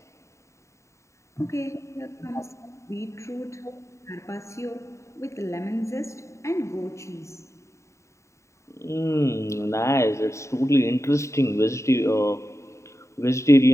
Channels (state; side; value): late; right; 0.14 ms